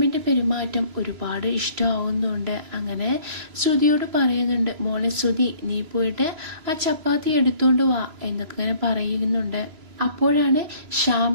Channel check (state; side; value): late; left; 3.0 ms